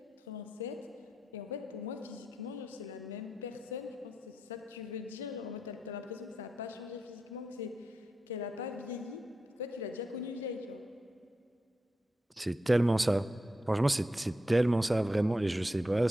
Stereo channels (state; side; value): normal; both; correlation 0.87